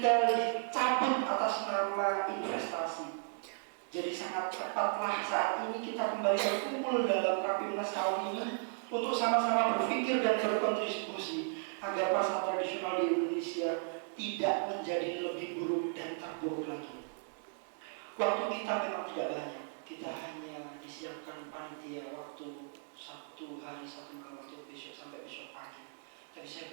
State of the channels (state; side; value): silent; left; digital silence